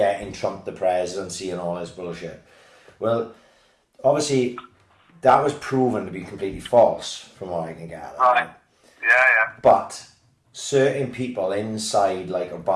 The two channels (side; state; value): both; identical; correlation 1.00